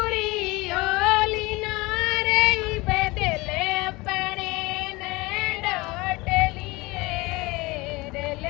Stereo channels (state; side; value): quieter; right; 22.7 dB